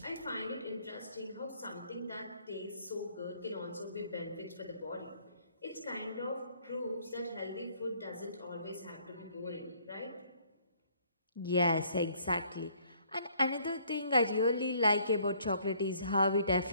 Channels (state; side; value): inverted; both; correlation -0.62